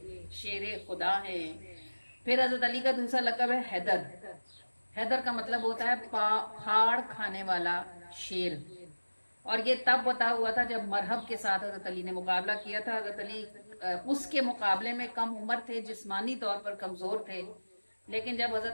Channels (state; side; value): inverted; both; correlation -1.00